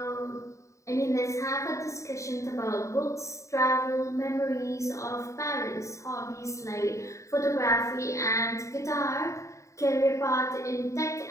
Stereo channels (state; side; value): late; right; 0.15 ms